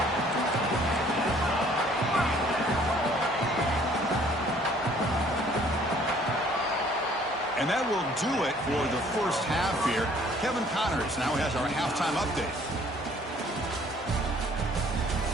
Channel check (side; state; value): both; normal; correlation 0.58